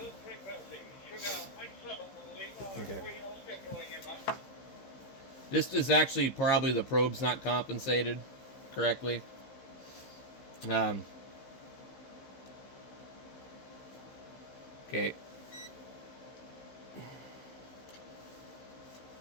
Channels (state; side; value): late; right; 15 ms